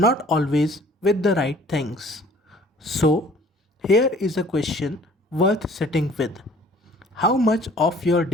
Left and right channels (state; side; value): normal; both; correlation 0.53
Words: always with the right things. So, here is a question worth sitting with. How much of your